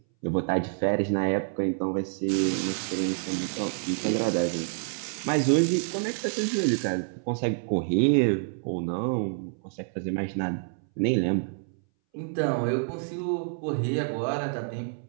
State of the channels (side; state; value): left; silent; 60 dB below the other